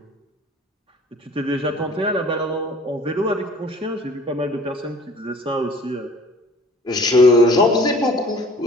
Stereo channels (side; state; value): both; normal; correlation 0.49